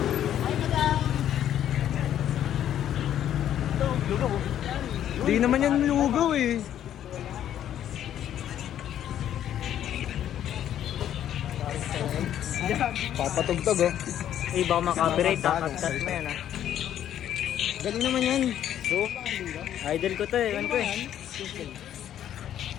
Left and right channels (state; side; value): quieter; right; 10.8 dB